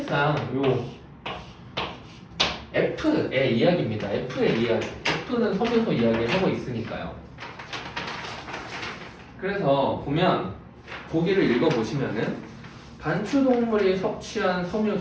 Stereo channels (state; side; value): identical; both; correlation 1.00